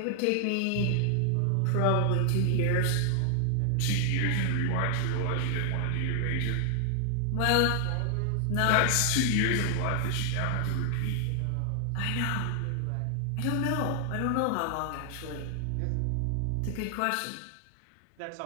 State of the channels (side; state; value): both; different; correlation 0.00